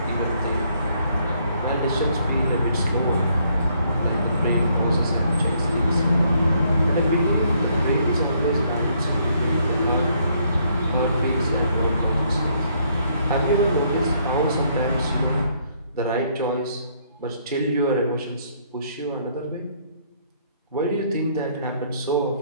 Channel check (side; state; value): both; inverted; correlation -0.69